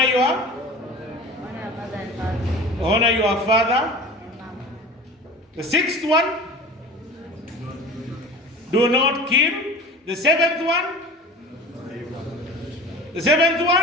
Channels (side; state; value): both; normal; correlation 0.38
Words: your honor your father. The sixth one? Do not kill. The seventh one? The seventh